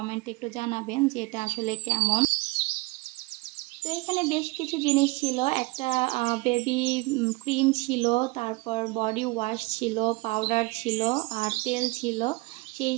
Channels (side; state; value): left; quieter; 25.0 dB